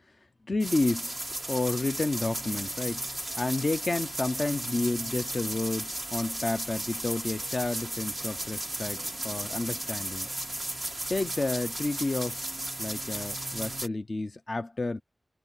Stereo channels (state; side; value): normal; both; correlation 0.96